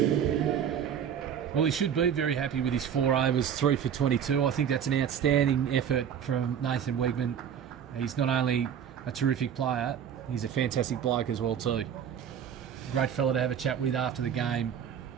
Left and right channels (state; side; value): quieter; left; 8.6 dB